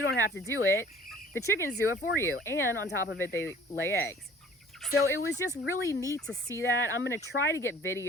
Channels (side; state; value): both; normal; correlation 0.51